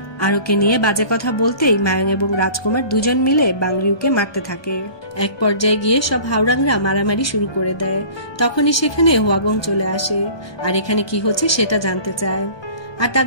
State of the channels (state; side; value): late; right; 1.2 ms